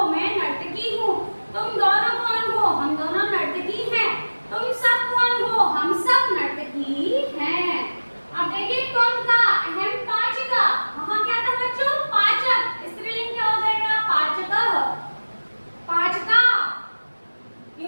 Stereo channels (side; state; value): both; inverted; correlation -1.00